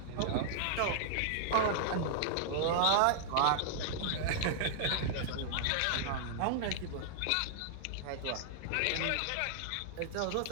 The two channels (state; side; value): different; both; correlation -0.01